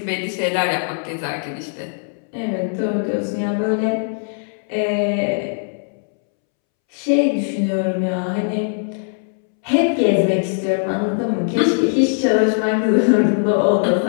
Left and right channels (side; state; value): right; silent; 66 dB below the other